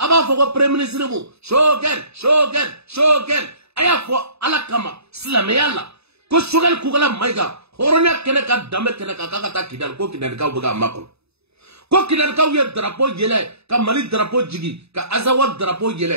foka prime ministry mu. Shogen. Aya fo alakama. Slameyala. Ko shogal kugala maiga. Hornya keneka dame keneka kakata kidal ko kidal ka buga makon. Ko kidal ka wiye drapeau yele. Ka mali drapeau jigi. Ka azawad drapeau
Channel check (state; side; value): late; left; 0.79 ms